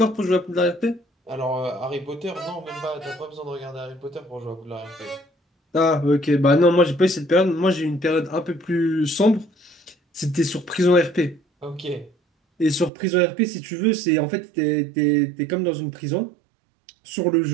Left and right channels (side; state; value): left; drops out; at 12.9 s